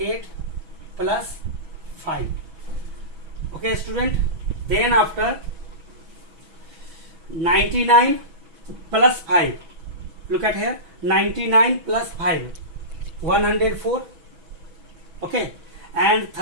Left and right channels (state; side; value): late; left; 6.1 ms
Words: plus 5. Okay student, then after 99 plus 5, look at here, 99 plus 5 104. Okay, and